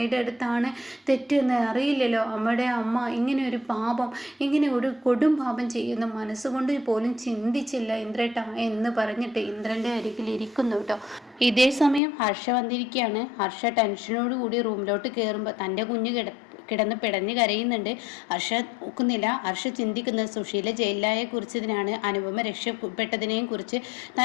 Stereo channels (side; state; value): right; drops out; at 12.0 s